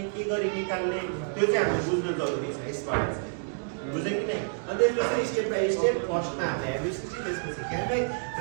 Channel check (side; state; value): left; silent; digital silence